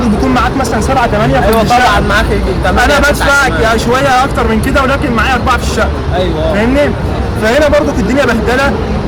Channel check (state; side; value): identical; both; correlation 1.00